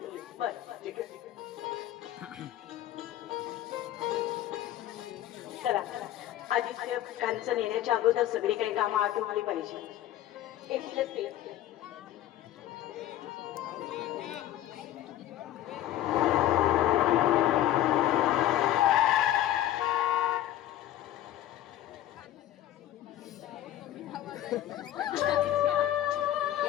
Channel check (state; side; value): quieter; right; 13.0 dB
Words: बरं ठीक आहे. चला, आदित्य कांचन येण्याच्या अगोदर सगळी काही कामं आटोपली पाहिजे. एकटीच ते